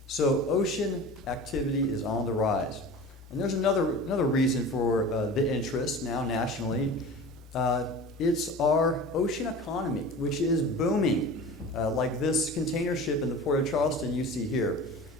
So ocean activity is on the rise. And there's another reason for the interest now nationally. It's our ocean economy, which is booming, like this container ship in the Port of Charleston you see here.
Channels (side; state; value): both; normal; correlation 0.36